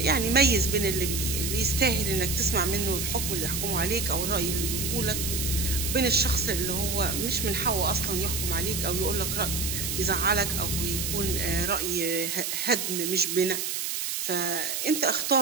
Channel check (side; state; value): right; noise; hiss, 2 dB below the sound